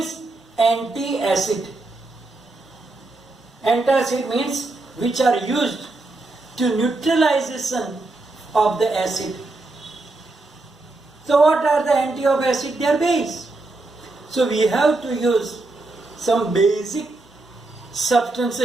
anti-acid. Antacid means which are used to neutralization of the acid. So what are the anti of acid? They are base. So we have to use some basic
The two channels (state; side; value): quieter; left; 3.1 dB